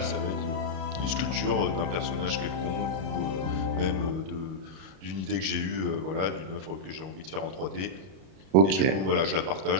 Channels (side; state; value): left; late; 32 ms